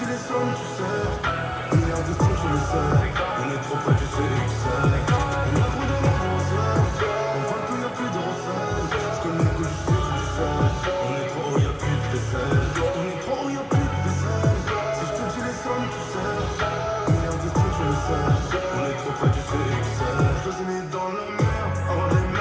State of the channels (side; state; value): both; identical; correlation 1.00